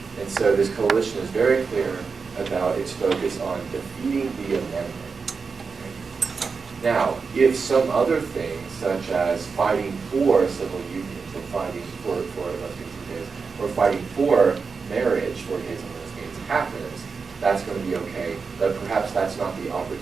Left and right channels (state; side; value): quieter; left; 5.1 dB